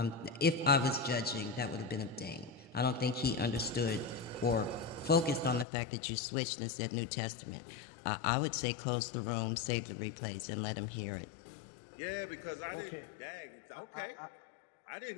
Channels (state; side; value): drops out; right; at 5.7 s